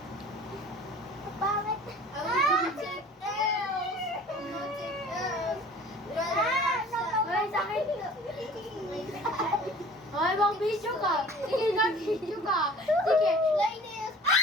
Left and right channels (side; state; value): both; normal; correlation 0.46